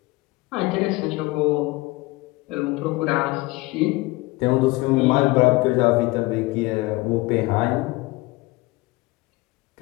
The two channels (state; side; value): quieter; right; 22.2 dB